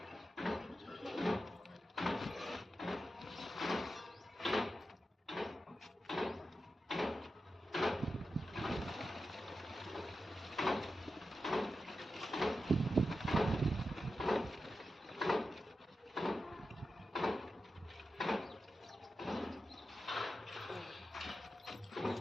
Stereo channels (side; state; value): both; normal; correlation 0.90